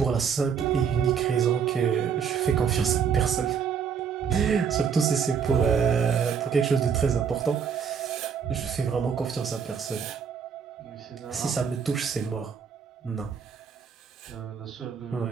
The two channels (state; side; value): quieter; left; 6.9 dB